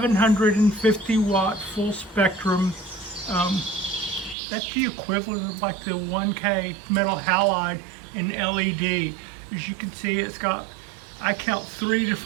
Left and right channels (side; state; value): left; drops out; at 4.4 s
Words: watt full spectrum. That's the equivalent of like the 1K metal halide in LED. As you can see, it's got, I count 3